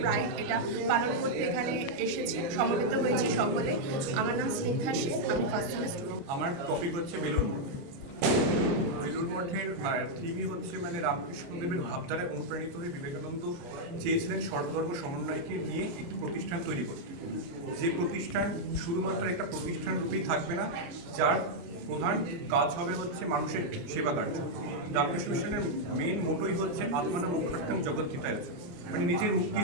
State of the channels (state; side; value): late; left; 29 ms